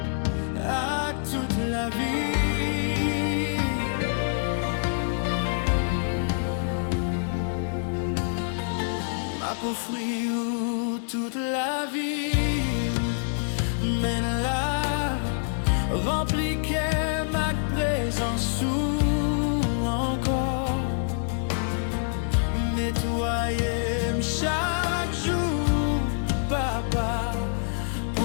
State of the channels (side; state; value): right; silent; digital silence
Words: À toute la vie, aux fruits où toute la vie mène là, rempli qu'est ma présence ou encore nettoyer chaque jour, papa,